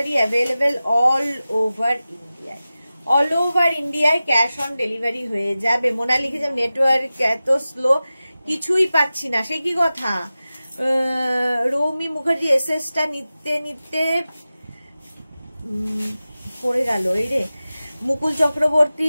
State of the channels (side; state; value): both; inverted; correlation -0.95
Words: available all over ইন্ডিয়ায়, অল ওভার ইন্ডিয়ায় ক্যাশ অন ডেলিভারি হয়ে যাবে। মোনা লিখেছে নেটওয়ার্ক এত স্লো, কিছুই পাচ্ছি না, সে কি কথা? রৌমি মুখার্জি এসএসটা নিতে নিতে পড়ে গেল, এই রে। মুকুল চক্রবর্তী